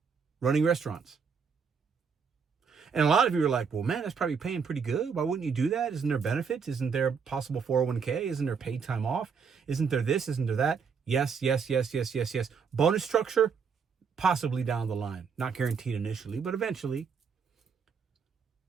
running restaurants. And a lot of you are like, well, man, that's probably paying pretty good. Why wouldn't you do that? Isn't there benefits? Isn't there possible 401k? Isn't there paid time off? Isn't there this? Isn't there that? Yes. Bonus structure, possibly down the line. Not guaranteed initially, but eventually.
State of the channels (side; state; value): left; quieter; 6.0 dB